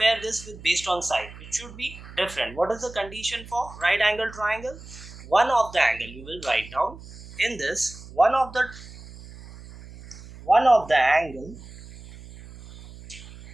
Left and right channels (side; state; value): right; noise; hum, 17 dB below the sound